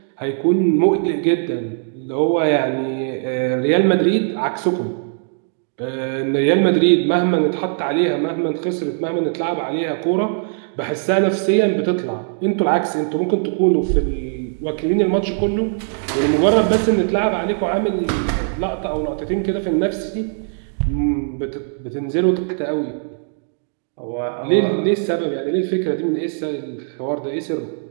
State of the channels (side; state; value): left; silent; digital silence